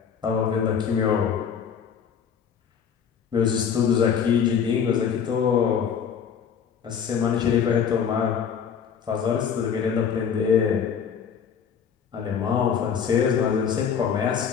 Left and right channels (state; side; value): quieter; right; 7.4 dB